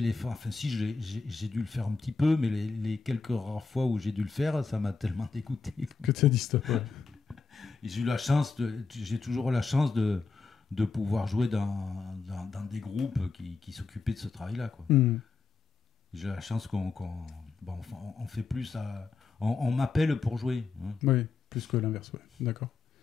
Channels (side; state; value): right; quieter; 4.5 dB